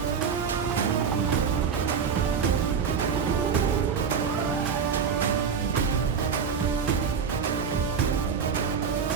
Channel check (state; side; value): quieter; left; 6.6 dB